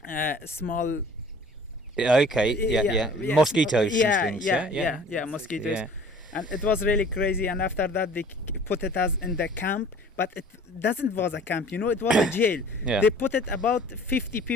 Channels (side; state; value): both; normal; correlation 0.49